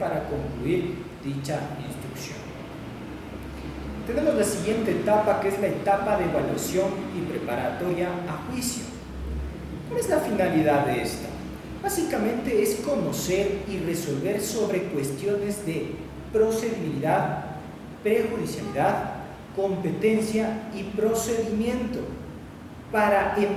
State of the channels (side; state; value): both; identical; correlation 1.00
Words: concluir dicha instrucción. Tenemos la siguiente etapa, que es la etapa de evaluación y preparatoria a juicio. ¿Cuál es la finalidad de esta? Básicamente es conocer y resolver sobre cuestiones de procedibilidad, prejudicialidad, competencia y procedimiento, para,